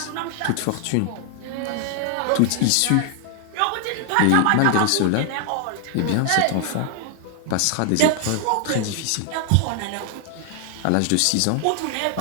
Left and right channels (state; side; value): different; both; correlation 0.00